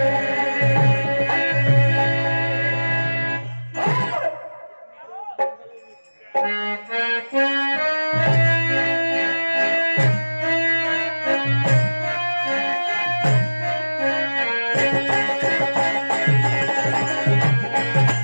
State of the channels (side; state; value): both; inverted; correlation -1.00